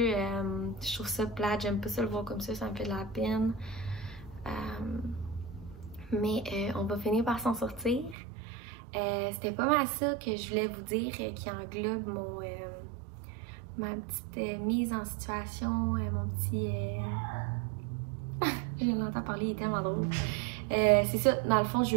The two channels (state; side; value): drops out; left; at 8.2 s